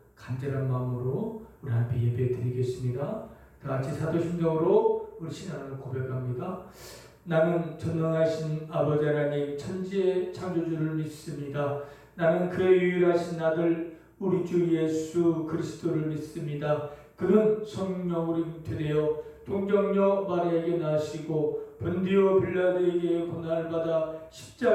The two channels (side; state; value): both; identical; correlation 1.00